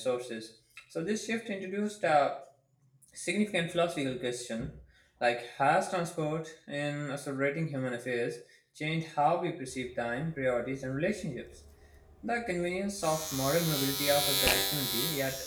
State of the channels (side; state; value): both; identical; correlation 1.00